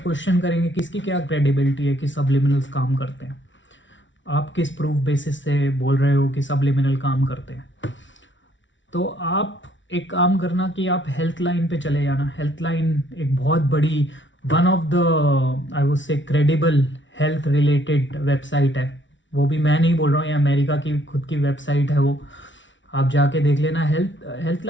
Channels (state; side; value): late; right; 0.55 ms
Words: करेंगे कि इसकी क्या क्रेडिबिलिटी है कि सबलिमिनल्स काम करते हैं, आप किस प्रूफ बेसिस से बोल रहे हो कि सबलिमिनल काम करते हैं। तो आप एक काम करना कि आप हेल्थ लाइन पे चले जाना। हेल्थ लाइन एक बहुत बड़ी, one of the I would say credible health related website है। वो भी मैं नहीं बोल रहा हूँ, ये अमेरिका की खुद की वेबसाइट है वो, आप जाके देख लेना। हेल्थ